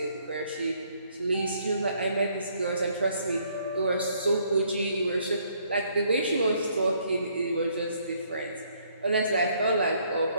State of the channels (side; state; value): both; inverted; correlation -0.67